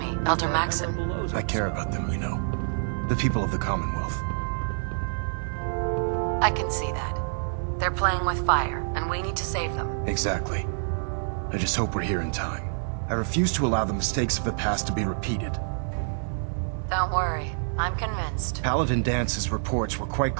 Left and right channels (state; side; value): silent; left; digital silence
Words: Elder Maxon. I care about them, you know. The people of the Commonwealth. I can see that. They're playing with fire, and we need to save them. Exactly. I just hope we're here in time. I refuse to allow the mistakes of the past to be repeated. Don't worry, I'm convinced. Paladin Dance's reports were quite